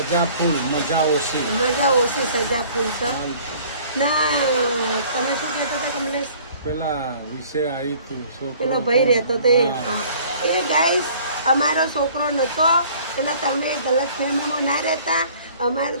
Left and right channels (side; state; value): both; inverted; correlation -0.53